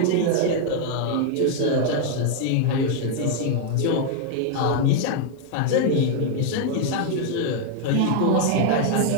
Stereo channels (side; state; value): both; different; correlation 0.00